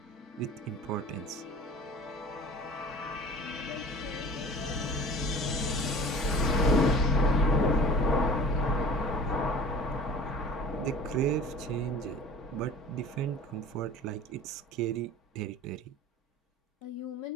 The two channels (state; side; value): normal; both; correlation 0.42